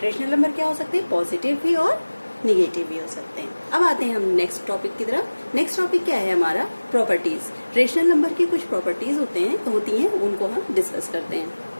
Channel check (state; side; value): inverted; both; correlation -1.00